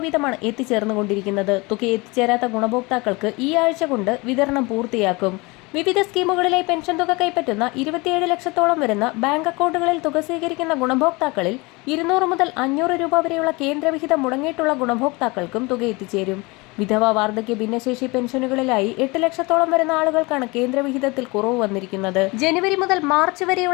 വീതമാണ് എത്തിച്ചേർന്നുകൊണ്ടിരിക്കുന്നത്. തുക എത്തിച്ചേരാത്ത ഗുണഭോക്താക്കൾക്ക് ഈ ആഴ്ച കൊണ്ട് വിതരണം പൂർത്തിയാക്കും. വിവിധ സ്കീമുകളിലായി പെൻഷൻ തുക കൈപ്പറ്റുന്ന 27 ലക്ഷത്തോളം വരുന്ന ബാങ്ക് അക്കൗണ്ടുകളിൽ തുക സ്വീകരിക്കുന്ന ഗുണഭോക്താക്കളിൽ 200 മുതൽ 500 രൂപ വരെയുള്ള കേന്ദ്രവിഹിതം മുടങ്ങിയിട്ടുള്ള ഗുണഭോക്താക്കൾക്കും തുക എത്തിച്ചേരും. വിധവ, വാർദ്ധക്യ, ഭിന്നശേഷി പെൻഷനുകളിലായി 8 ലക്ഷത്തോളം വരുന്ന ആളുകൾക്കാണ് കേന്ദ്രവിഹിതത്തിൽ കുറവ് വന്നിരിക്കുന്നത്. ജനുവരി മുതൽ മാർച്ച്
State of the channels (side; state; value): right; quieter; 25.3 dB